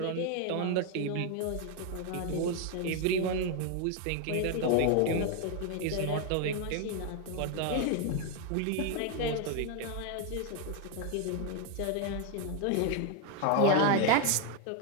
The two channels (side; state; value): both; different; correlation 0.01